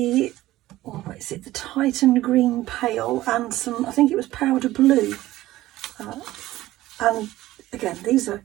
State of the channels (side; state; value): left; quieter; 16.1 dB